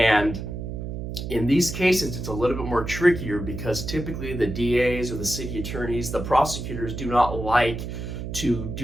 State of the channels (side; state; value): right; noise; hum, 6 dB below the sound